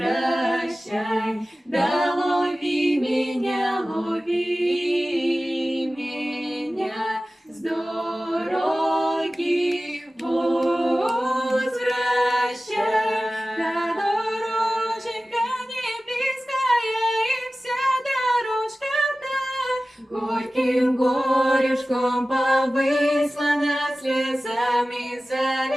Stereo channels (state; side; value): normal; both; correlation 0.96